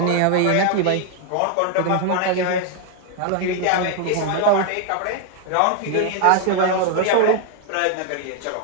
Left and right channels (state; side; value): different; both; correlation 0.00